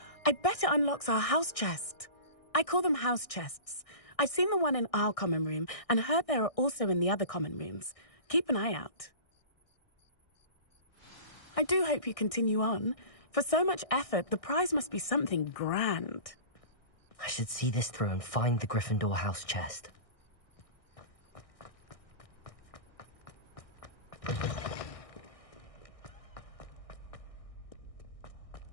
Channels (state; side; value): late; right; 1.6 ms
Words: I bet it unlocks our house chest. I call them house chests. I've seen the one in our common room and heard there are also in the other common rooms. Keep an eye out. I do hope you continue on. For so much effort, the prize must be something grand. I should see this through and find the Gryffindor house chest.